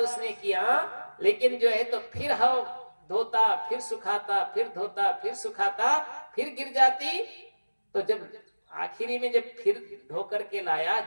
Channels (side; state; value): both; inverted; correlation -1.00